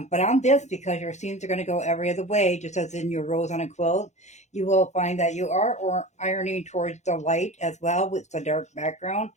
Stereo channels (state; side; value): late; right; 0.33 ms